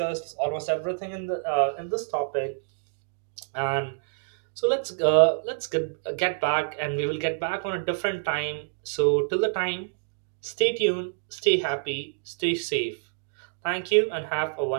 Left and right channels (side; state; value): left; silent; digital silence